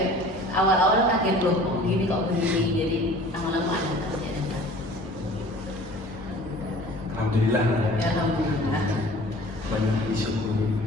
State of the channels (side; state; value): both; normal; correlation 0.46